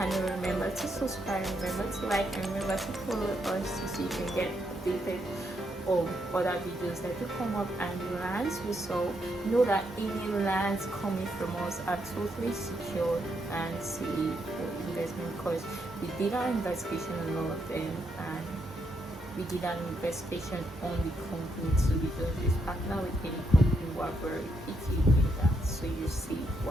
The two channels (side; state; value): both; normal; correlation 0.78